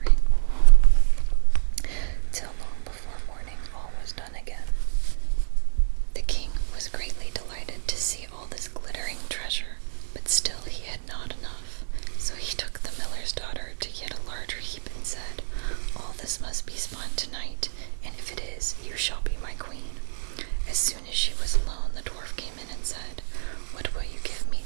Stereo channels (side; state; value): left; silent; digital silence